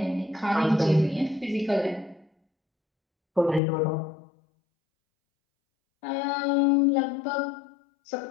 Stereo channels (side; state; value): right; drops out; at 3.6 s